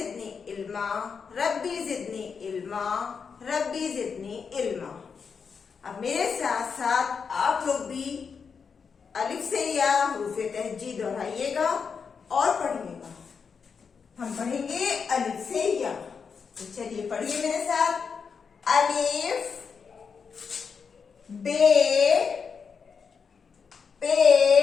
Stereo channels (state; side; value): quieter; right; 5.9 dB